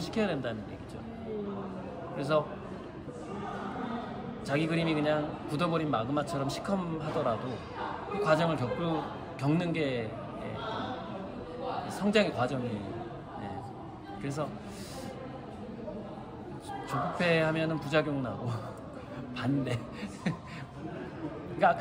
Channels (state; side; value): identical; both; correlation 1.00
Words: 된다는 얘기죠. 그래서 자기 그림이 그냥 굳어버린 마그마처럼 시커하더라도 그 과정을 겪는 게 성장의 과정이에요. 그래서 조급해하면은 부작용 나고 반대. 그러니까